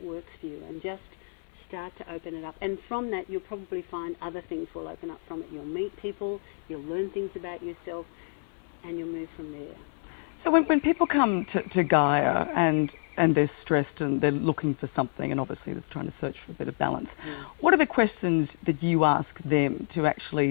works for you, and just start to open it up. And from that, you'll probably find other things will open up from it. You'll meet people, you'll learn things about yourself, and you'll move from there. So when people come to Gaia and they're stressed and they're looking for something and obviously they're trying to search for a bit of balance, what are the questions that you ask them to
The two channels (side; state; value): right; silent; 59 dB below the other